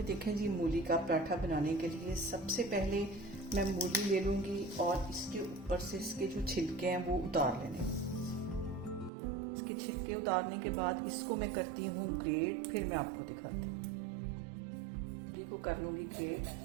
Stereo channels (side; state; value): left; drops out; at 9.1 s